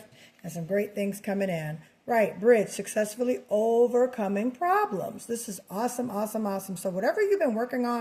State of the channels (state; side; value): identical; both; correlation 1.00